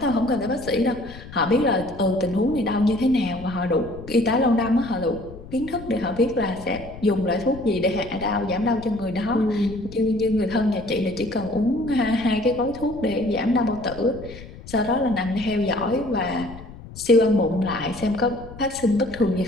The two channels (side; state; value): left; noise; rumble, 15 dB below the sound